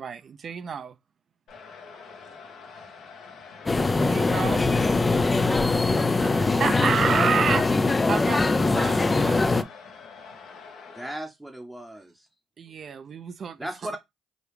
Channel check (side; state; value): both; normal; correlation 0.90